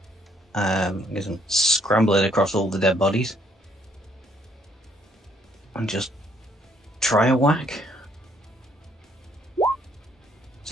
Because I'm scrambling across all the dead bodies. And just try a whack.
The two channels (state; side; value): normal; both; correlation 0.67